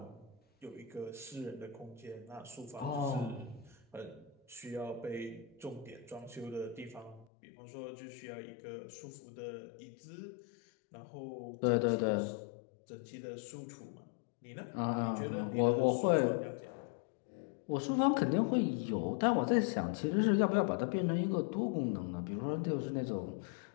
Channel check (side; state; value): right; drops out; at 7.2 s